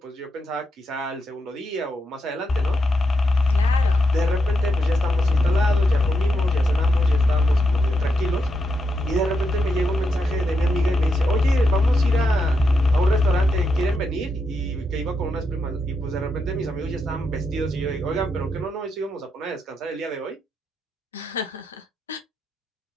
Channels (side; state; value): both; normal; correlation 0.83